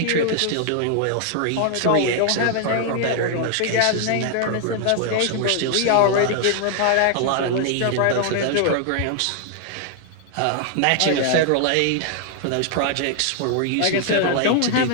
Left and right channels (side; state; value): both; different; correlation 0.00